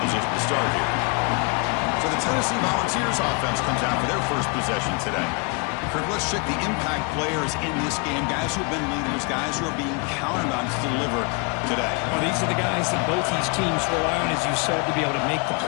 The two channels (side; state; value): right; quieter; 33.0 dB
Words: position to start here. So the Tennessee Volunteers offense comes out for their first possession today. Kurt, let's check the impact players in this game. Guys who have been leaders, guys who are being counted on to deliver today. Well, these are the guys that both these teams rely on, as you said, to be able to make the